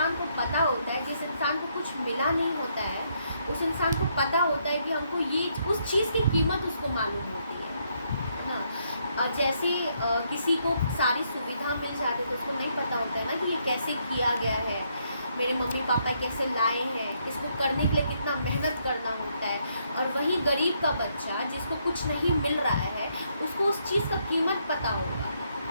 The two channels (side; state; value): both; inverted; correlation -0.74